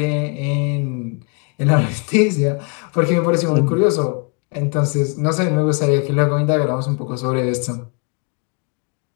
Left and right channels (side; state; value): right; quieter; 36.2 dB